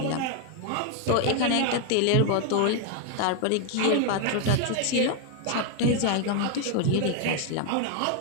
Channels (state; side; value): different; both; correlation 0.01